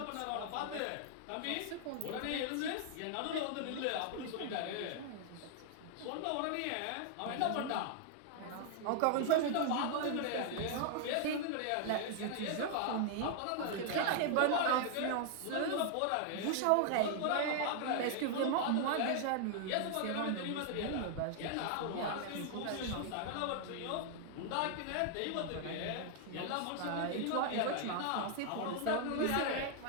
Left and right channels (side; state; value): both; different; correlation 0.00